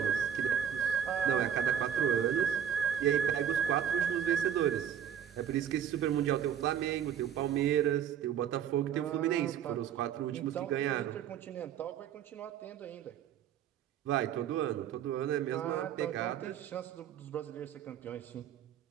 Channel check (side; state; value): left; quieter; 9.1 dB